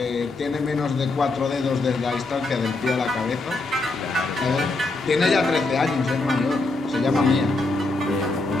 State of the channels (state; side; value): quieter; right; 3.2 dB